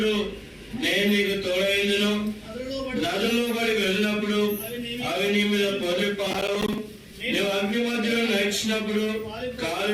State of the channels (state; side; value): identical; both; correlation 1.00